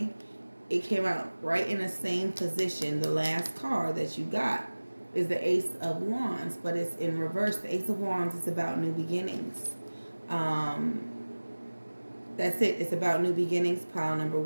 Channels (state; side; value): inverted; both; correlation -1.00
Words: It came out right in the same position. The last card that you got is the Ace of Wands, but it's in reverse. The Ace of Wands is about new beginnings. That's it. It's about new beginnings, pile number